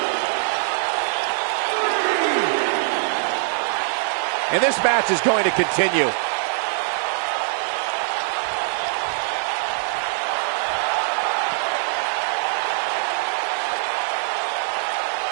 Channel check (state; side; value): silent; left; digital silence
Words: And this match is going to continue.